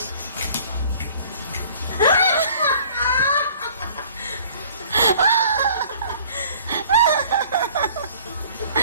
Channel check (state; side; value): inverted; both; correlation -0.52